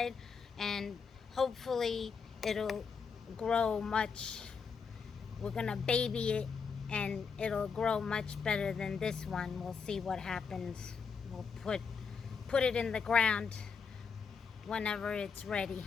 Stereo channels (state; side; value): quieter; right; 5.7 dB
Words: and hopefully it'll grow much. We're gonna baby it and it'll grow much better than this one. We'll see what happens. We'll put it in the ground whenever it's ready.